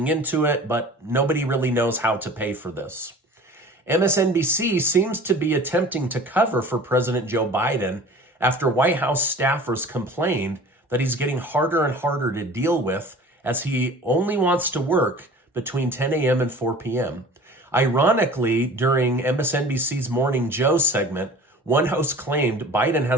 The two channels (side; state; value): both; normal; correlation 0.42